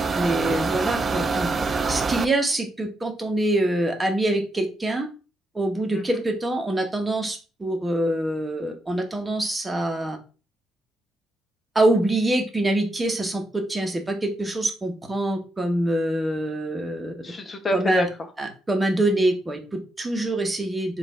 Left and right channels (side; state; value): both; normal; correlation 0.83